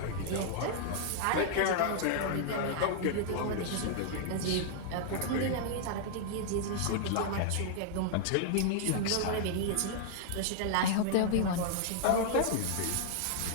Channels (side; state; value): both; different; correlation -0.01